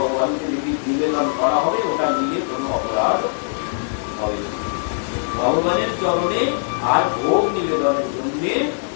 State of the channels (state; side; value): silent; right; 56 dB below the other